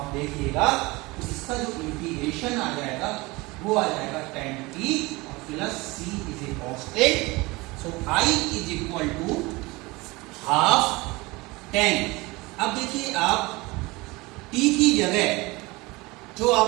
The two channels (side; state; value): left; quieter; 23.0 dB